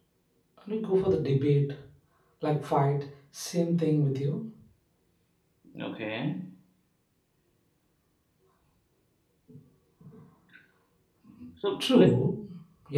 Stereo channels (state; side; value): identical; both; correlation 1.00